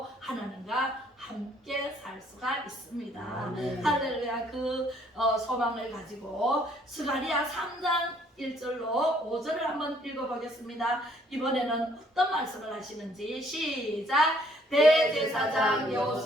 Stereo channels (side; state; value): both; normal; correlation 0.64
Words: 하나님과 함께 살 수가 있습니다. 할렐루야. 그 소망을 가지고 스가랴 3장 1절로 5절을 한번 읽어보겠습니다. 이번에는 어떤 말씀을 하시는지 시작. 대제사장